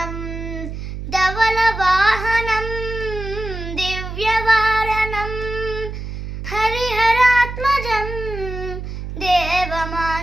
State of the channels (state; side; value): noise; right; hum, 7 dB below the sound